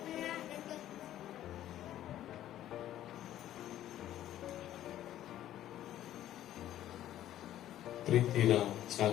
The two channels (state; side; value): quieter; right; 12.6 dB